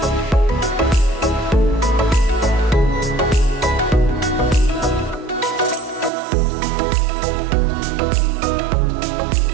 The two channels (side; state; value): left; drops out; at 6.1 s